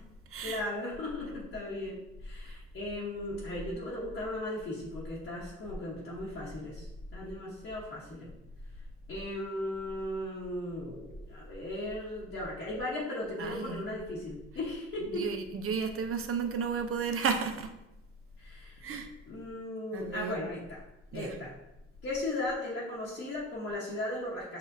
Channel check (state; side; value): normal; both; correlation 0.31